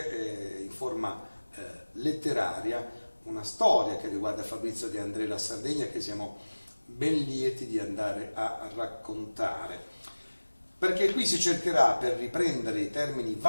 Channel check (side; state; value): both; inverted; correlation -1.00